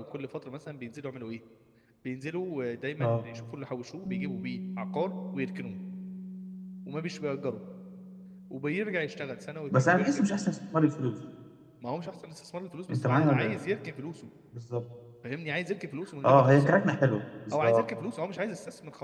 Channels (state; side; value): identical; both; correlation 1.00